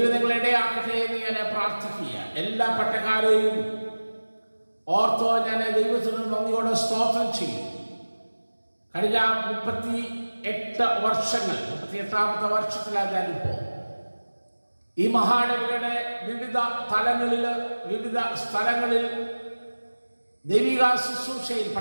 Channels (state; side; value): inverted; both; correlation -1.00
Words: നിങ്ങളെ ഇടയാക്കട്ടെ എന്ന് ഞാൻ പ്രാർത്ഥിക്കുക. എല്ലാ പട്ടക്കാരെയും ഓർത്തോ ഞാൻ ദൈവത്തിന് നന്ദിയോടെ സ്തോത്രം ചെയ്യും. കഴിഞ്ഞ 38 വർഷങ്ങൾ, 38ാമത്തെ വർഷത്തിലാണ് ഞാനിപ്പോൾ ഈ മഹാനഗരയുടെ വിവിധ തലങ്ങളിൽ, വിവിധ സ്ഥലങ്ങളിൽ ദൈവിക ശുശ്രൂഷയിൽ,